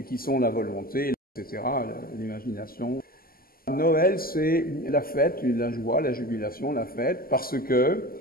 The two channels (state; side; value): late; right; 0.42 ms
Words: qui sont la volonté, etc., l'imagination. Noël, c'est la fête, la joie, la jubilation, la fête, parce que